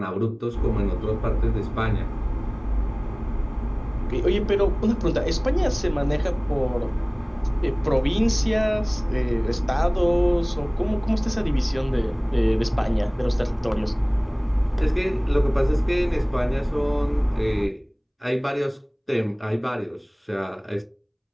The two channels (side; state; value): both; identical; correlation 1.00